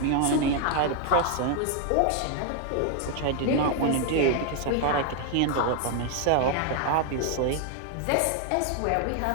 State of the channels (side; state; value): both; different; correlation 0.00